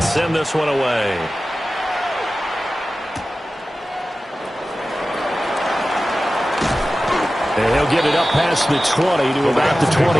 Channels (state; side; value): normal; both; correlation 0.95